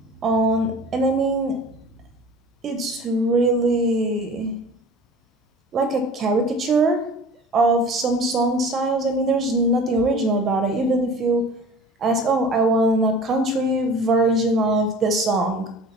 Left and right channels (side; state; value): both; normal; correlation 0.42